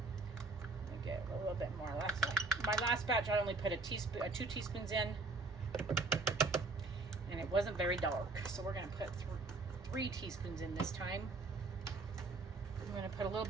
Let me get a little bit more. My last batch, I only put 2 teaspoons in, and it wasn't very dark. So we're gonna put 3 teaspoons in this time. I'm gonna put a little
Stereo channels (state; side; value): quieter; left; 3.4 dB